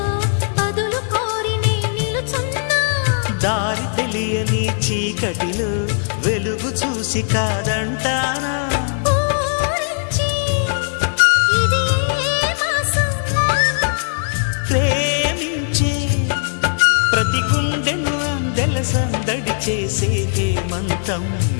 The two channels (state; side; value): silent; right; digital silence